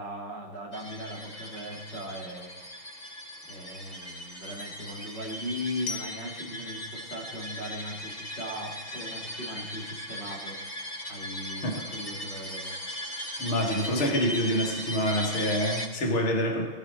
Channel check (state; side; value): late; right; 6.0 ms